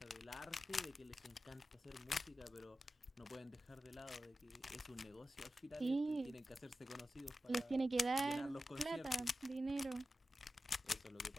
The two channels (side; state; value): both; normal; correlation 0.93